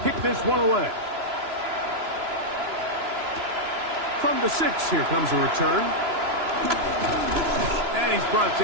kick this one away. From the 6, here comes a return. And he's brought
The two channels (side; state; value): left; late; 3.0 ms